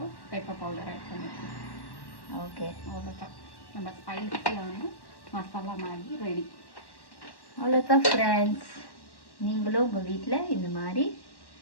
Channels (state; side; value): late; right; 1.1 ms